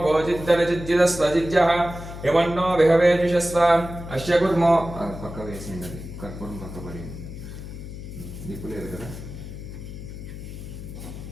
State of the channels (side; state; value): left; noise; hum, 11 dB below the sound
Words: जिद्दनजिद्जिदस्वजिद्यः यमन्नो विहवेजुषस्व अस्य कुर्मो पक्क वेसिंडది कर्पूरं पक्क पడి దీపులేదు కదా